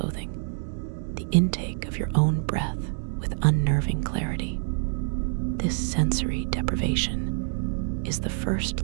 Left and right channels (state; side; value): silent; left; digital silence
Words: the intake of your own breath with unnerving clarity. This sensory deprivation is the first